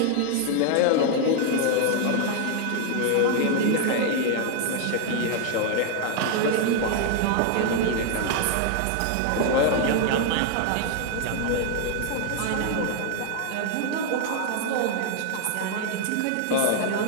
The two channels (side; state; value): both; different; correlation 0.00